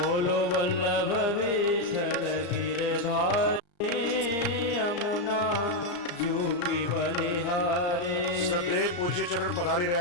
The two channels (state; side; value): late; right; 34 ms